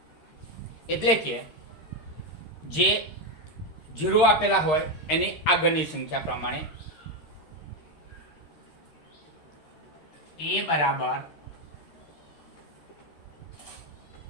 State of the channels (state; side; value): late; right; 13 ms